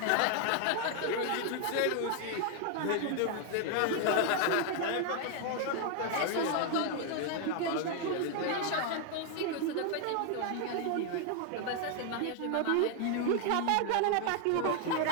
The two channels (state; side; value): different; both; correlation 0.00